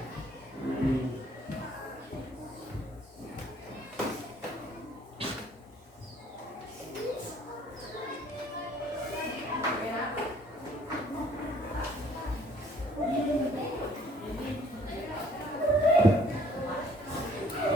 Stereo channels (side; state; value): both; normal; correlation 0.59